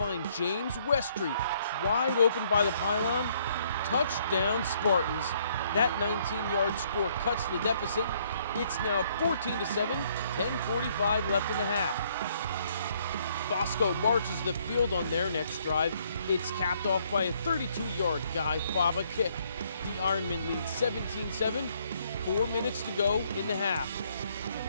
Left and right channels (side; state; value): both; inverted; correlation -0.67